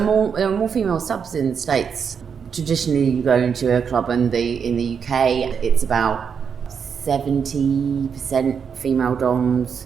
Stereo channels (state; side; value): quieter; left; 6.7 dB